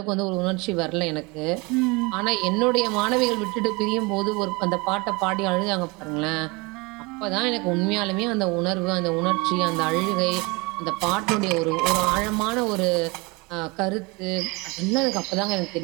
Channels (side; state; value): left; quieter; 26.4 dB